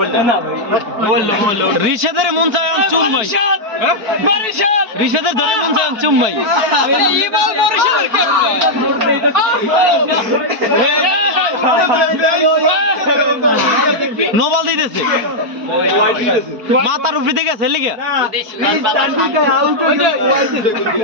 রিশাদের মন চায় চুম্মাই রিশাদের ধরে মন চায় চুম্মাই নোবাল দিতেছে মাথার উপরে দিকে আছে লিখে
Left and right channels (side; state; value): left; late; 4.5 ms